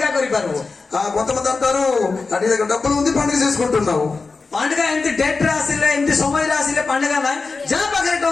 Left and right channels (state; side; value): quieter; right; 4.2 dB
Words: କରିପାରିବୁ. కొంతమంది అంటారు, నీ దగ్గర డబ్బులు ఉంది, పండుగ చేసుకుంటున్నావు. ପାଣ୍ଡିକା ଏମିତି ଡେଟ୍ ରେ ଆସିଲେ, ଏମିତି ସମୟରେ ଆସିଲେ ପାଣ୍ଡିକା ନାହିଁ. ଯାହା ପାଖରେ